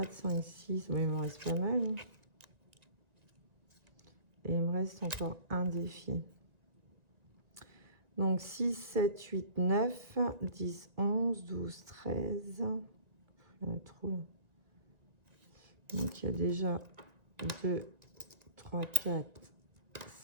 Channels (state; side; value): late; left; 1.8 ms